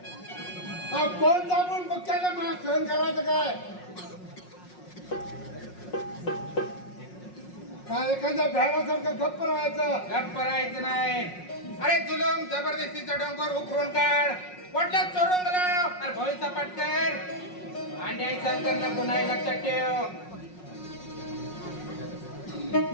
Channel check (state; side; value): late; right; 5.5 ms